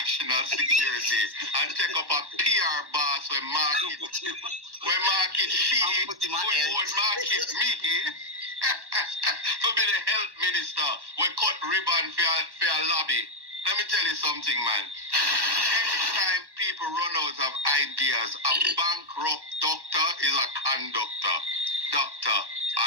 Security and take up a PR boss when market she, when market me. For be the health minister, we cut ribbon for a lobby. Let me tell you something, man. Anytime people run out of ideas, a bankrupt doctor is a conductor. Dr.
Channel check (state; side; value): late; left; 1.1 ms